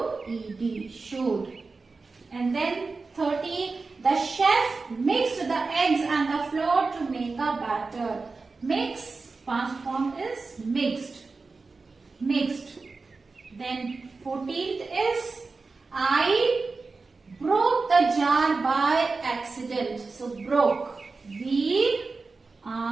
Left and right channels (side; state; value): left; quieter; 4.1 dB